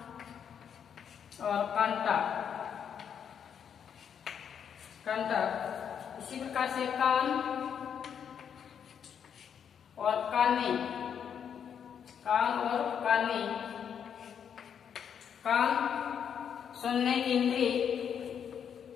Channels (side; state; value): right; quieter; 7.9 dB